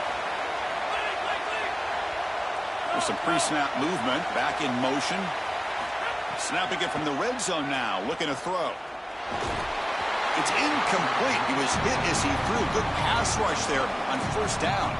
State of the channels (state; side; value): identical; both; correlation 1.00